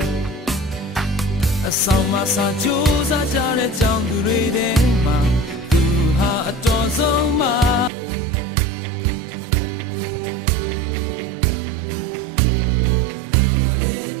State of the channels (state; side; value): drops out; left; at 7.9 s